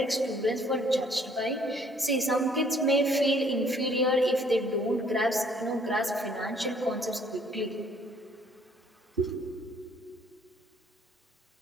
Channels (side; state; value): both; normal; correlation 0.61